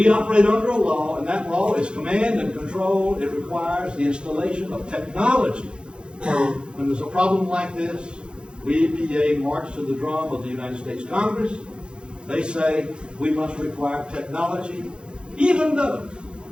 operate under a law, and that law is command and control. It requires the installation of technology. When there's a problem like this, we, EPA, march to the drum of the United States Congress. They say we must require technology, even though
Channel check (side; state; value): left; late; 0.053 ms